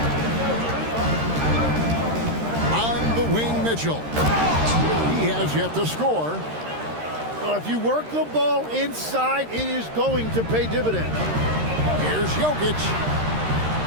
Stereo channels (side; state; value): left; late; 13 ms